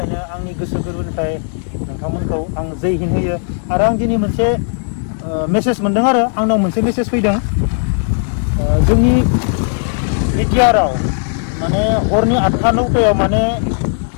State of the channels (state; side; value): silent; right; 67 dB below the other